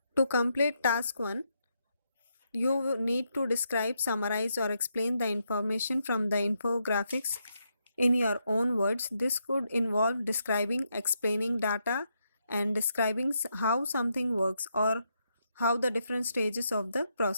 To complete task 1, you need to describe, summarize or explain the information from the infographics in your own words. This could involve describing, explaining data and describing how something works or how the different stages of the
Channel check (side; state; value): both; inverted; correlation -0.80